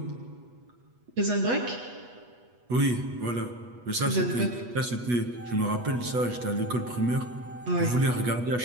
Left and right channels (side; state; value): left; late; 8.2 ms